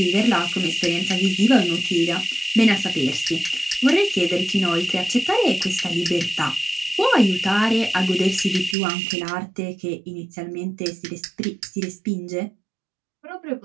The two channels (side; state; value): left; drops out; at 8.8 s